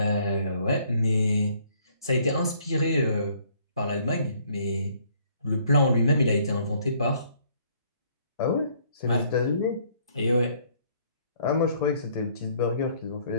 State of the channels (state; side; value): inverted; both; correlation -0.63